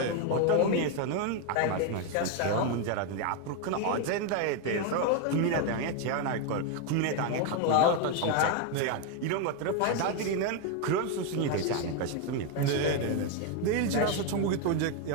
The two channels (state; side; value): different; both; correlation 0.01